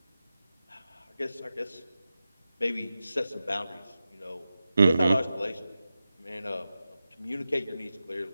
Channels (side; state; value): both; inverted; correlation -0.93